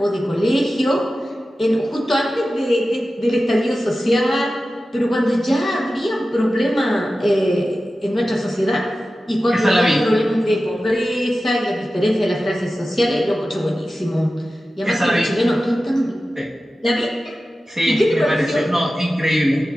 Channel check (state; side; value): normal; both; correlation 0.94